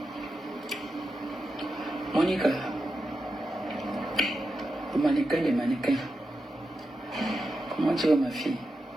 Monica, le mannequin, les mannequins. Comment tu vas ma fille?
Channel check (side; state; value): both; normal; correlation 0.88